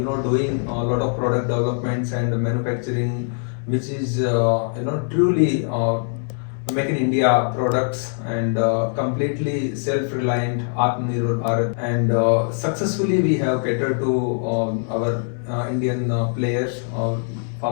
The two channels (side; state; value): right; silent; 64 dB below the other